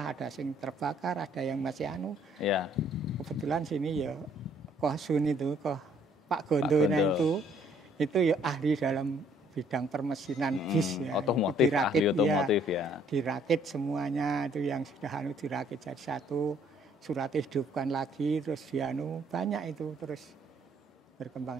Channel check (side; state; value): both; normal; correlation 0.63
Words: ada yang terbakar, ada yang masih Ya. Kebetulan sini ya Koh Sun itu, Pak Gondo itu ya ahli dalam bidang permesinan bis ya. Otomotif, dirakit, ahli otomotif ya. Dirakit semuanya itu yang sudah dirakit jadi satu, suratnya hidupkan lagi, terus banyak itu terus